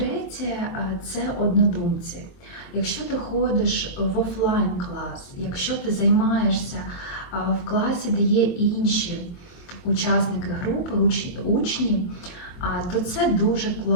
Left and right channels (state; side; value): late; right; 23 ms